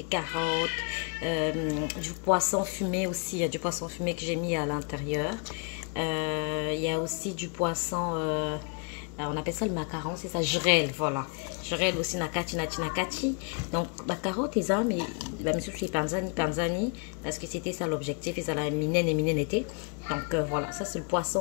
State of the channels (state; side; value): quieter; right; 36.1 dB